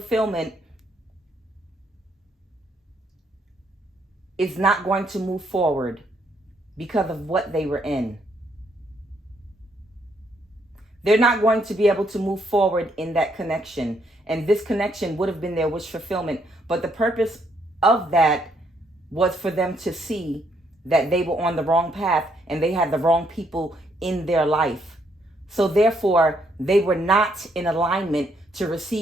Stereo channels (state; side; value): normal; both; correlation 0.72